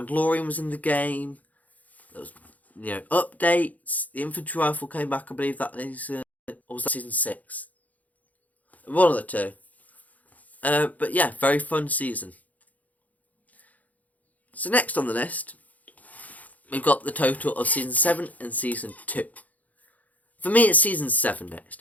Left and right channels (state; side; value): late; right; 0.076 ms